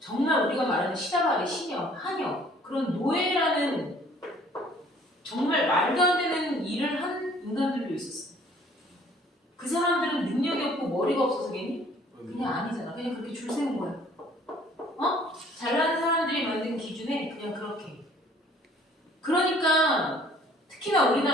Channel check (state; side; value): normal; both; correlation 0.56